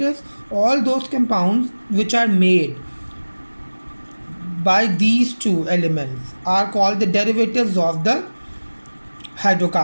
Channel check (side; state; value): both; inverted; correlation -1.00